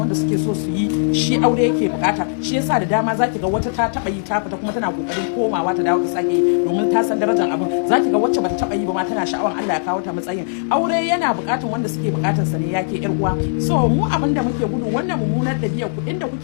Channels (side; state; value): right; silent; 66 dB below the other